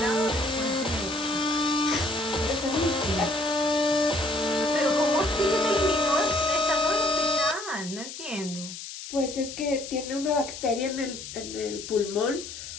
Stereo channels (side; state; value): left; noise; hiss, 10 dB below the sound